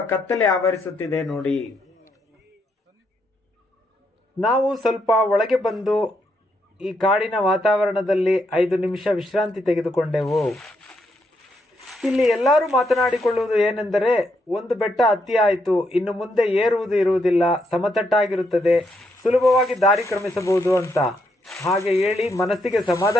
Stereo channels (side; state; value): both; normal; correlation 0.77